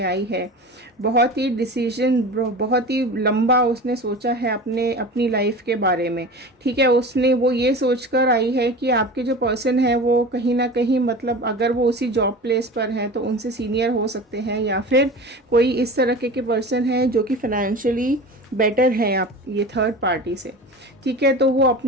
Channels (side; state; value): both; normal; correlation 0.34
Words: आई है। बहुत ही डिसीजन, बहुत ही लंबा उसने सोचा है अपनी लाइफ के बारे में, ठीक है। उसने वो ये सोचकर आई है कि आपके जो पर्सन है वो कहीं ना कहीं, मतलब अगर वो उसी जॉब प्लेस पर हैं तो उनसे सीनियर हो सकते हैं, या फिर कोई इस तरह के पर्सन है जो कि फाइनेंशियली बेटर है आप ये थर्ड पार्टी से, ठीक है। तो वो